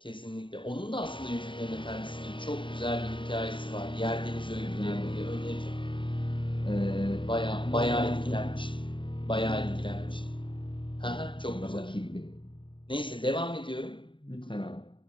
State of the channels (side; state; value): right; late; 0.24 ms